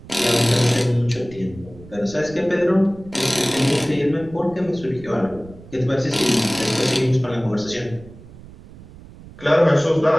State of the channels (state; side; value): noise; right; rumble, 19 dB below the sound